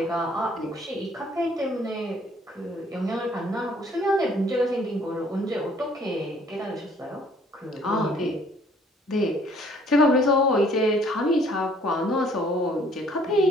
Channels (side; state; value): both; normal; correlation 0.60